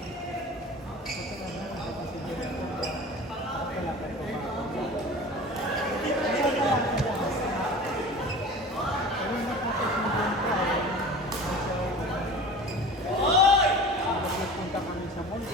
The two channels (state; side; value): normal; both; correlation 0.38